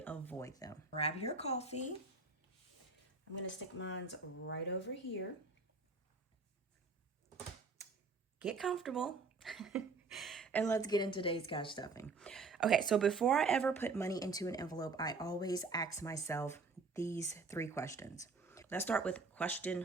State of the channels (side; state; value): left; quieter; 4.2 dB